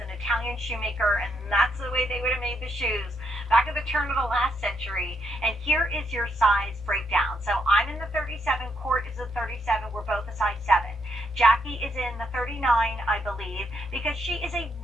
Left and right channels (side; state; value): both; normal; correlation 0.77